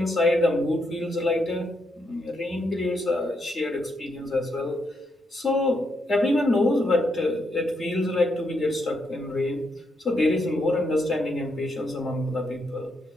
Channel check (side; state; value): both; normal; correlation 0.79